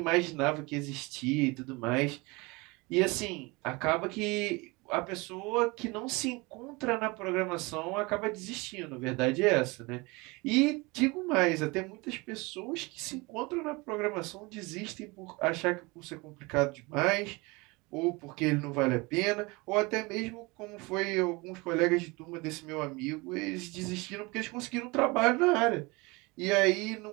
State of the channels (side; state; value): left; quieter; 25.2 dB